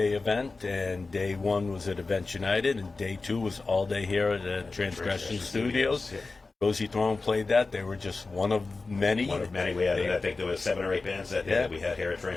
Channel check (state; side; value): quieter; right; 3.8 dB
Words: event, and day 1 was at Events United, and day 2 was all day here at the Transgression Studios. Yeah. Cozy Throne played that. They were just one of many. One of many. I think there was 7 or 8 bands that we had here at